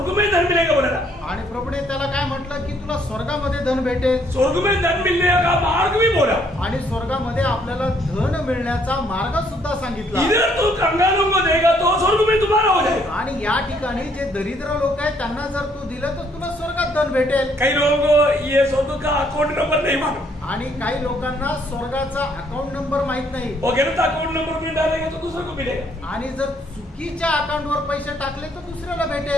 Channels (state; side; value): normal; both; correlation 0.67